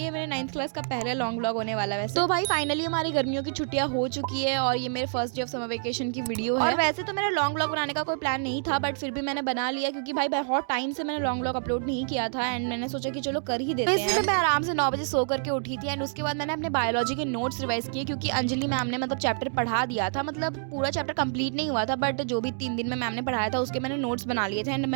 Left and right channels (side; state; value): left; silent; digital silence